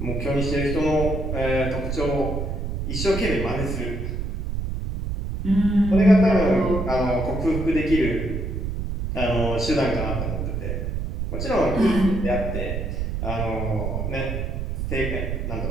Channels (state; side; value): noise; right; rumble, 3 dB below the sound